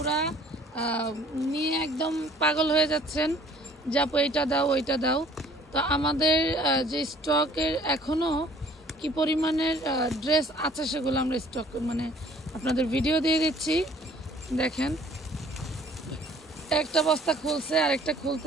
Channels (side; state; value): both; normal; correlation 0.55